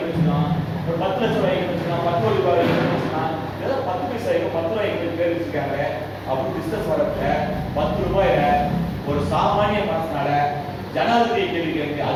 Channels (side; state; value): both; identical; correlation 1.00